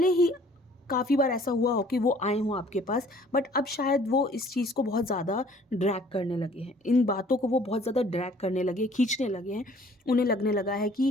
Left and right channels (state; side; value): normal; both; correlation 0.55